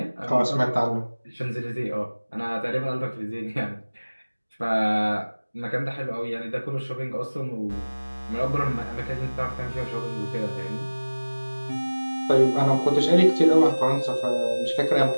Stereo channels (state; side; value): inverted; both; correlation -1.00